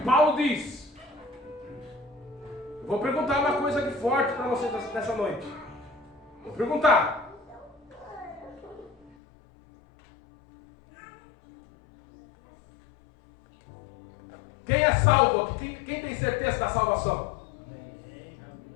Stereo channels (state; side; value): drops out; right; at 9.2 s